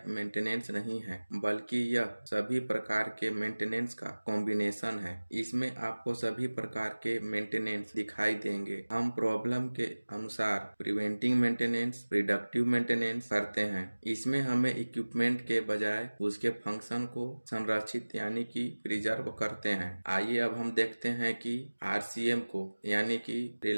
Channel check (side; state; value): both; inverted; correlation -1.00